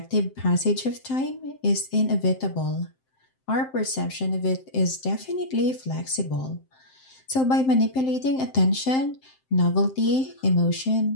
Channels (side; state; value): right; late; 7.7 ms